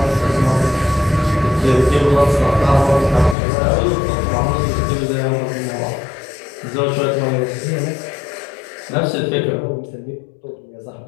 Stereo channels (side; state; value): right; drops out; at 3.4 s